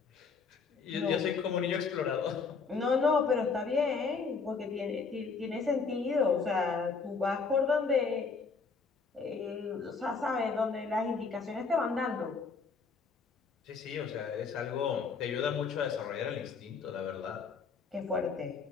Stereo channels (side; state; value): right; quieter; 5.0 dB